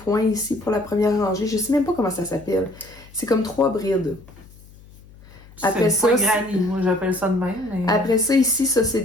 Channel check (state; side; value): noise; left; hum, 23 dB below the sound